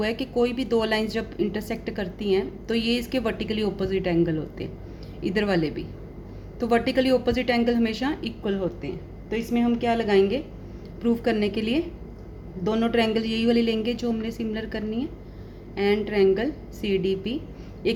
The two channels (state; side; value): identical; both; correlation 1.00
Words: है कि कोई भी दो लाइंस जब इंटरसेक्ट करती हैं तो ये इसके वर्टिकली ऑपोजिट एंगल होते हैं, इधर वाले भी। तो वर्टिकली ऑपोजिट एंगल हमेशा इक्वल होते हैं। तो इसमें हम क्या लगाएंगे प्रूव करने के लिए, दोनों ट्रायंगल यही वाली लेंगे जो हमने सिमिलर करनी है। एंड ट्रायंगल CDP,